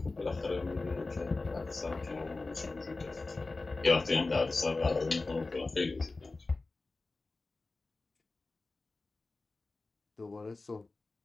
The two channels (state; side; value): quieter; right; 3.5 dB